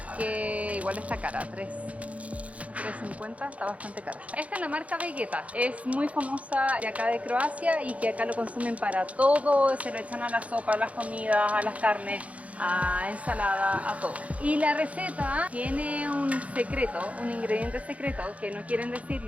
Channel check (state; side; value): late; left; 0.066 ms